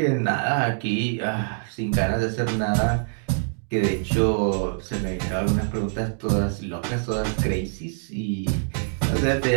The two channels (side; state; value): left; silent; digital silence